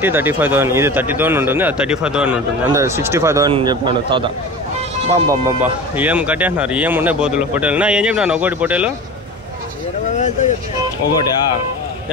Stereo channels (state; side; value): normal; both; correlation 0.33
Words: ఇది 30,000 ఉంటుంది, అది 35,000 ఉంటుంది. అంటే 65,000 చెప్పినాడు తాత. బాబా ఏం కట్టేస్తున్నారు, ఏం ఉన్నాయి పోతులు పొట్టేలు. నా ఏం చెప్పినాను ఒకటి పొట్టేలు? ఒకటి